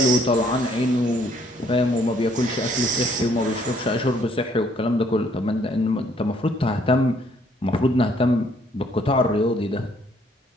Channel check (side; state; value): both; normal; correlation 0.65